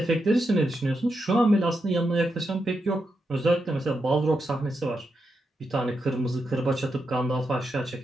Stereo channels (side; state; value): both; normal; correlation 0.85